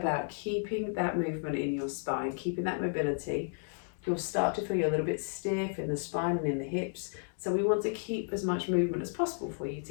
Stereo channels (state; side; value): silent; right; 56 dB below the other